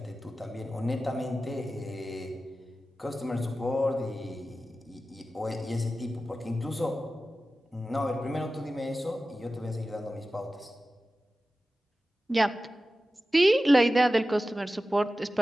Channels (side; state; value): both; normal; correlation 0.94